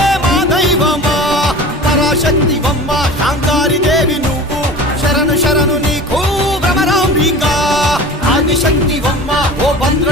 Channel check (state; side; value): normal; both; correlation 0.37